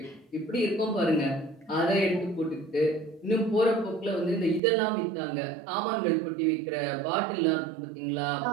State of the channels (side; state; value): left; drops out; at 4.6 s